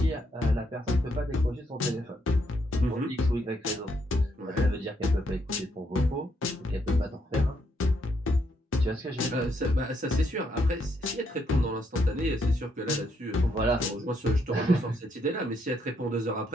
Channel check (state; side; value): normal; both; correlation 0.75